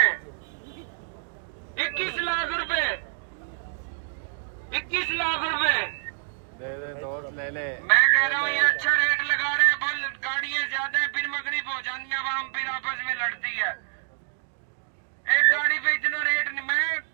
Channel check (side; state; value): left; silent; digital silence